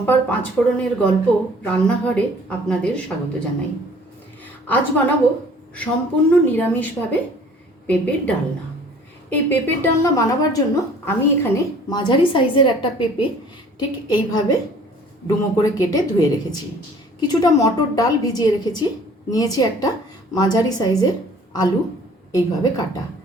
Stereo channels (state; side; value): normal; both; correlation 0.52